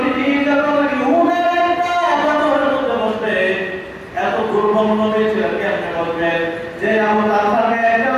দুর্বল নবী ছিলেন কেমনে বলবেন যে আবু তালহাকে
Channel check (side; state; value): both; identical; correlation 1.00